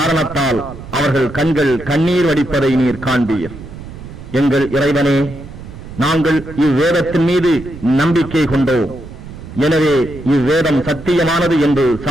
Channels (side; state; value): right; noise; rumble, 14 dB below the sound